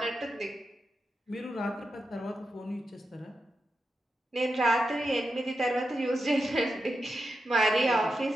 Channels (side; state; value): both; normal; correlation 0.88